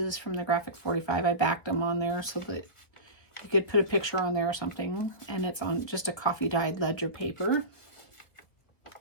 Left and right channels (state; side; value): late; right; 1.7 ms